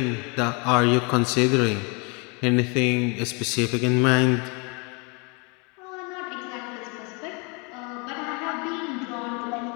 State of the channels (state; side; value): quieter; right; 32.0 dB